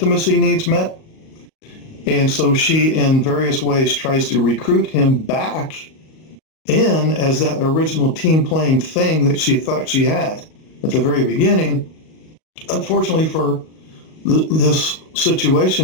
needs met. And so she, in various ways, tries to recruit him back in as that original team playing thing that she thought she had at the very beginning. Unfortunately for this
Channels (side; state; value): right; late; 38 ms